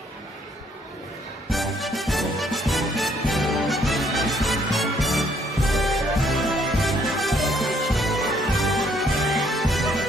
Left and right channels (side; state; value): both; normal; correlation 0.66